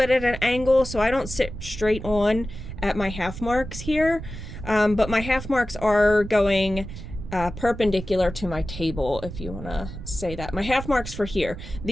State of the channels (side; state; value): right; noise; rumble, 10 dB below the sound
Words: at an angle, so I don't sit straight on at my half marks here, but my half marks are going perpendicular to my table, if you want to say that. My half marks for here,